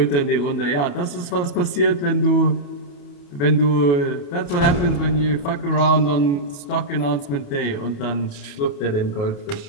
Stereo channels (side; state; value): right; late; 28 ms